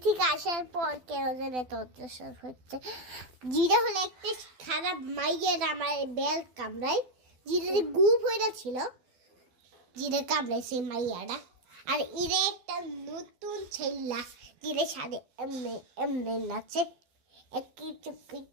থেকে আসার পর কেন যেন এত অত্যাচার হচ্ছে। জিরা হলো একটা খারাপ মাইয়ের আমার বেল কামড়ায়, জিরাতে গুপ হয়ে ছিল, জিরে কামড়াইছে মাইয়াটা। আর ইরে একটা নতুন ছেলা জিরের সাথে এমনি এমনি নাচে, একটু চুপকি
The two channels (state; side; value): late; left; 12 ms